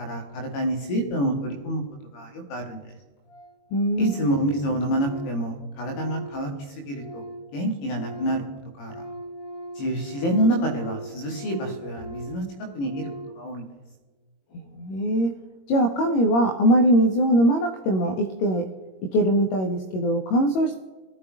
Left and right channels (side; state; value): right; late; 21 ms